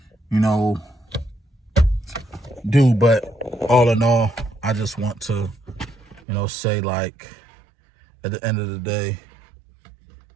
do, but all in all, I just want to, say, like, at the end of the day,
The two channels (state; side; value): drops out; left; at 6.2 s